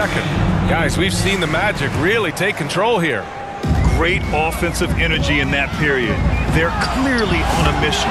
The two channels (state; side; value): identical; both; correlation 1.00